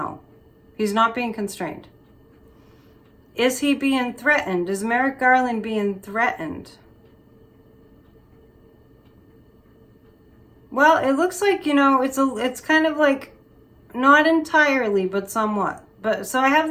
He's not being constrained. Is he being threatened? Is Merrick Garland being threatened? Well, it looks like, it's kind of like, not entirely, but somewhat. But so I have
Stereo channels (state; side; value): identical; both; correlation 1.00